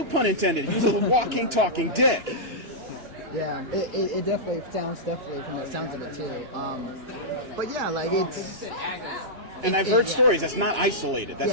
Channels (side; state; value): left; late; 2.9 ms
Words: pun intended. He was a walking, talking dick. Yeah, it definitely sounds from the sounds of it too. But yeah, like it's. And I've heard stories. That's not isolated.